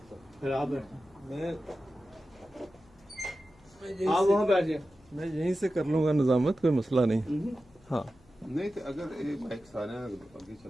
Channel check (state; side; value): noise; left; hum, 29 dB below the sound